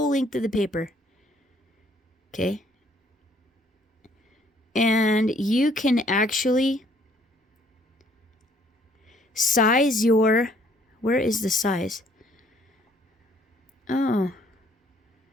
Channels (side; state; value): both; normal; correlation 0.62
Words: length of the paper. Okay. And you can actually size your... Where is the size? Oh.